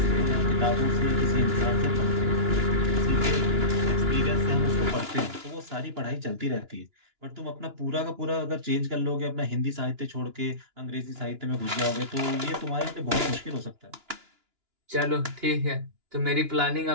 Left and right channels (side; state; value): left; late; 2.9 ms